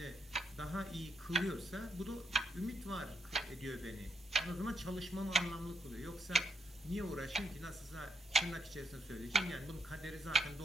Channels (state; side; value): normal; both; correlation 0.74